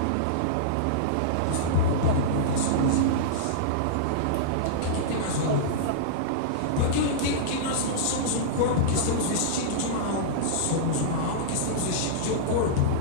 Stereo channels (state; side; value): different; both; correlation -0.03